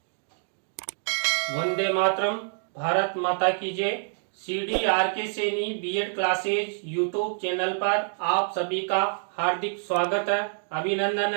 वंदे मातरम, भारत माता की जय। CDRK Saini B Ed classes YouTube channel पर आप सभी का हार्दिक स्वागत है, अभिनंदन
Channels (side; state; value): left; silent; digital silence